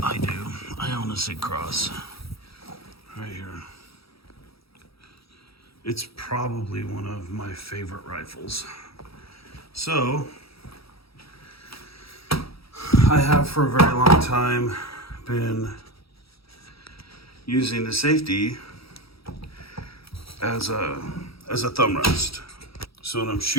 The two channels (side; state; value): right; late; 0.76 ms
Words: I do. I own a Sig Cross. Right here. It's probably one of my favorite rifles. So, I have for a very long time been using the safety as a thumb rest. So when I'm